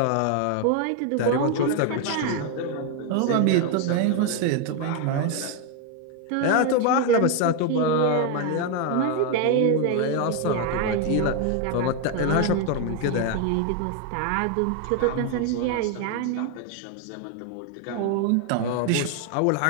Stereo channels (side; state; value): both; different; correlation 0.01